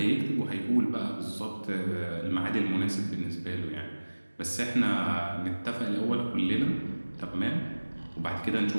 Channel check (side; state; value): both; inverted; correlation -1.00